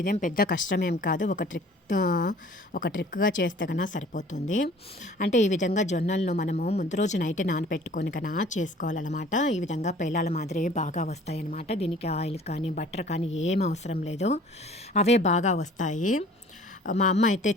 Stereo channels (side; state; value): both; normal; correlation 0.50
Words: పెద్ద కష్టమేం కాదు, ఒక ట్రిక్గా చేస్తే కన్నా సరిపోతుంది. అంటే ఈ విధంగా జొన్నలను మనము ముందు రోజు నైట్ నానపెట్టుకొని కన్నా చేసుకోవాలన్నమాట. ఈ విధంగా పేలాల మాదిరి బాగా వస్తాయన్నమాట. దీనికి ఆయిల్ కానీ బటర్ కానీ ఏం అవసరం లేదు, అవే బాగా వస్తాయి. మా అమ్మ అయితే